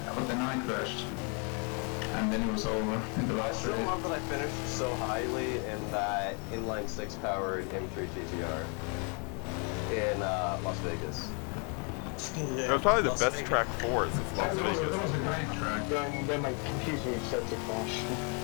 but then I crashed, and then it was over in the I last still race. love that I finished so highly in that inline 6 powered M3 GTR in Las Vegas. It was probably the best track for it since Las That was Vegas. a great track. Then my computer started to crash.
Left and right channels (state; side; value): quieter; right; 36.2 dB